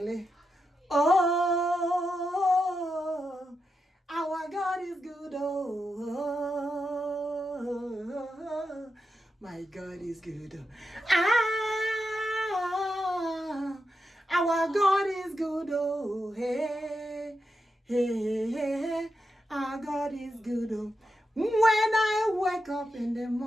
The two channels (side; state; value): both; normal; correlation 0.87